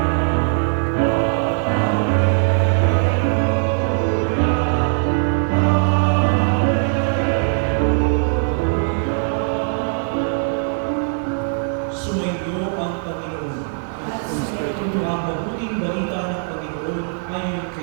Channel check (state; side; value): silent; left; digital silence